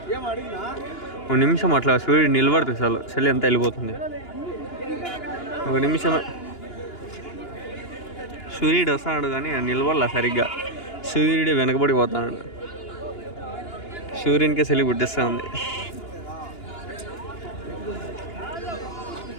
ఒక నిమిషం అట్లా సూర్యుడు నిలబడుతుంది చలి అంతా వెళ్ళిపోతుంది ఒక నిమిషమే సూర్యుడు వస్తాడు కానీ నిలబడలా సరిగ్గా సూర్యుడు వెనకబడిపోతాడు సూర్యునికే చలి పుట్టిస్తూ ఉంది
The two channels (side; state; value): right; late; 2.9 ms